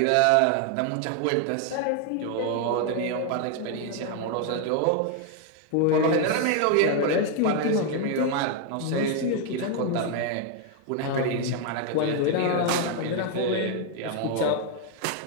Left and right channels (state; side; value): different; both; correlation 0.01